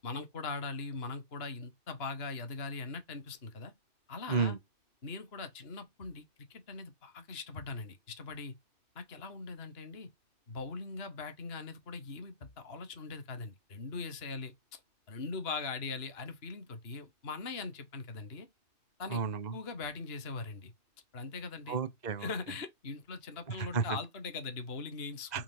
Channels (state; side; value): late; right; 2.9 ms